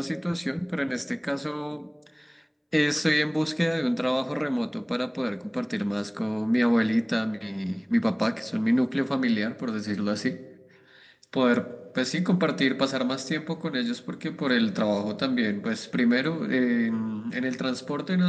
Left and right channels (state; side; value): identical; both; correlation 1.00